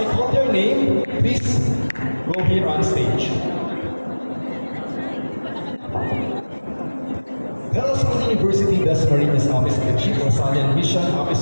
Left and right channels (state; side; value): inverted; both; correlation -1.00